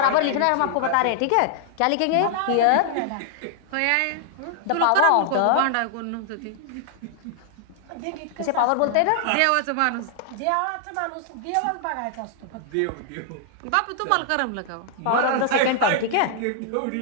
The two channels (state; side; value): different; both; correlation 0.00